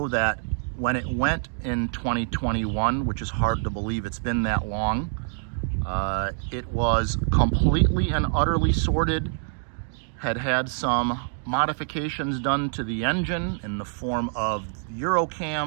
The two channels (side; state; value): left; silent; digital silence